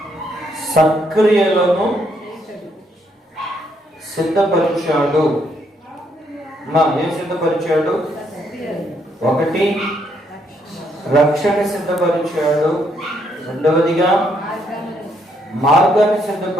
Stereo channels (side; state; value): both; normal; correlation 0.73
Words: సక్రియలను సిద్ధపరిచాడు. ఏం సిద్ధపరిచాడు? ఒకటి, రక్షణ సిద్ధపరిచాడు. రెండవదిగా మార్గాన్ని